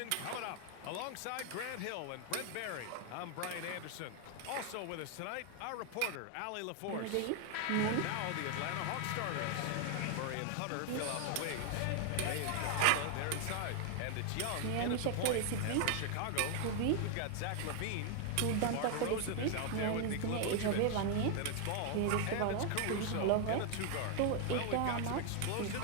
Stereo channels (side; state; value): both; different; correlation 0.00